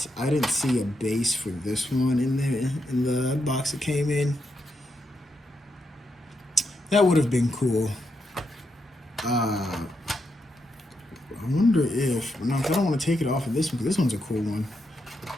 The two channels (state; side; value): normal; both; correlation 0.82